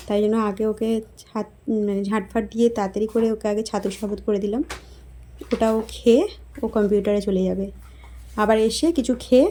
তাই জন্য আগে ওকে ঝাঁটফাট দিয়ে তাড়াতাড়ি করে ওকে আগে ছাতুর শরবত করে দিলাম। ওটাও খেয়ে ও কম্পিউটারে চলে যাবে, আবার এসে কিছু খেয়ে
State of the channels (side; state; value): both; identical; correlation 1.00